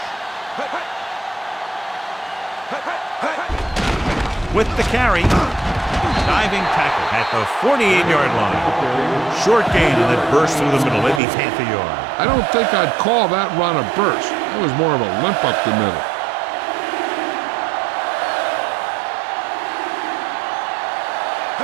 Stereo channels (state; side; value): drops out; left; at 11.2 s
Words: With the carry, diving tackle at the 48-yard line. Short gain on that burst through the middle, maybe half a yard. I don't think I'd call that run a burst. It was more of a limp up the middle.